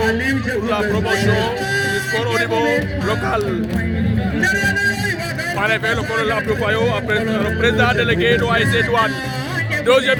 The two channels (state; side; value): identical; both; correlation 1.00